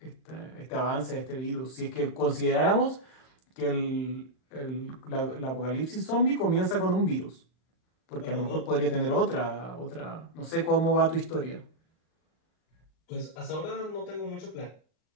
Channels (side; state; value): right; late; 38 ms